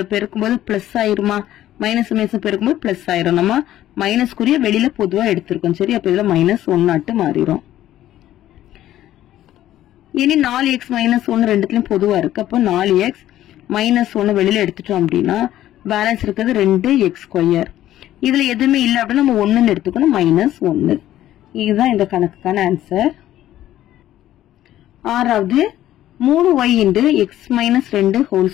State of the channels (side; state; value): right; quieter; 13.2 dB